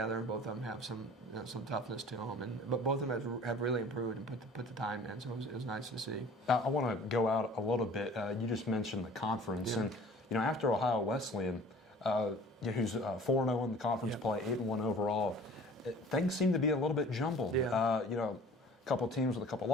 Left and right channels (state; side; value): normal; both; correlation 0.47